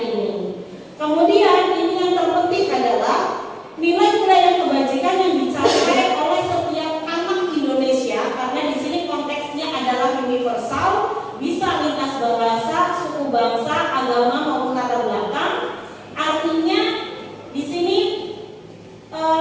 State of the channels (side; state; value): both; identical; correlation 1.00